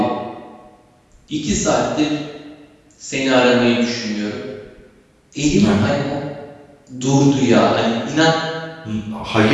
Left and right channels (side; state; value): both; identical; correlation 1.00